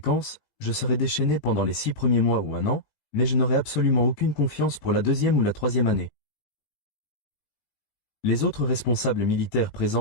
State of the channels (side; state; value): right; late; 18 ms